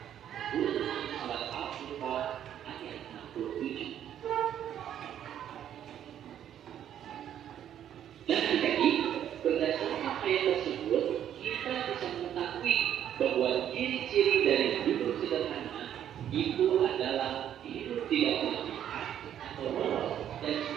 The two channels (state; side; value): quieter; left; 10.2 dB